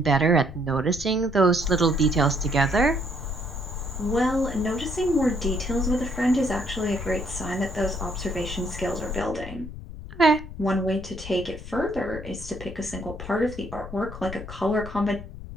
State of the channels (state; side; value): noise; left; rumble, 12 dB below the sound